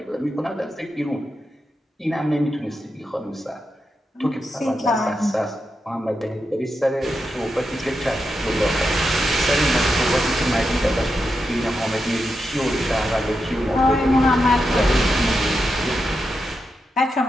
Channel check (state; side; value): normal; both; correlation 0.87